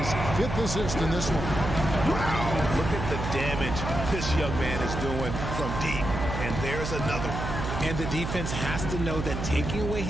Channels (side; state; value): right; noise; hum, 4 dB below the sound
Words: 5th assist in this one. Wow, look at the damage this young man is doing from deep. And there's another. And the defense has to know that taking away